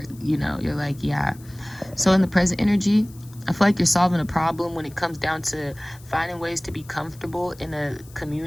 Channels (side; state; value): left; noise; hiss, 24 dB below the sound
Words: you're like, yeah. So in the present energy, I feel like you're solving a problem when it comes down to finding ways to be comfortable in a